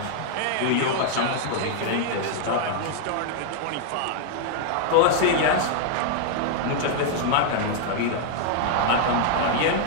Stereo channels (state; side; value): different; both; correlation -0.01